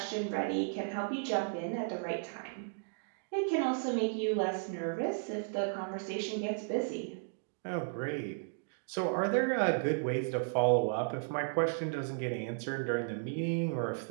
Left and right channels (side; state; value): left; silent; digital silence